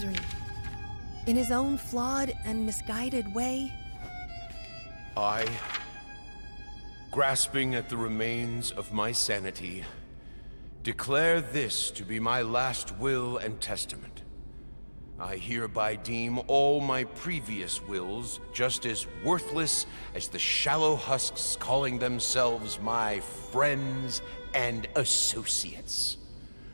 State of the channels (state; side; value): inverted; both; correlation -1.00